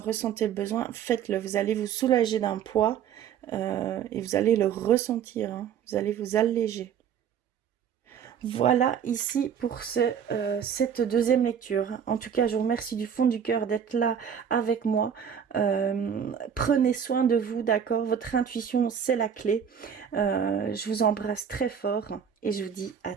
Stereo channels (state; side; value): quieter; left; 8.1 dB